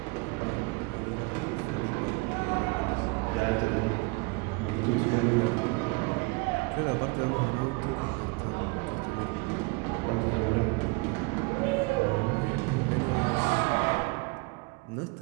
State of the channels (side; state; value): left; quieter; 26.9 dB